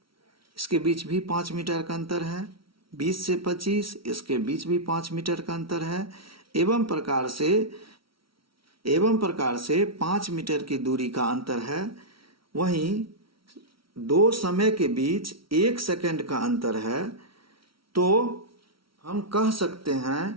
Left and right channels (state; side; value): late; left; 0.75 ms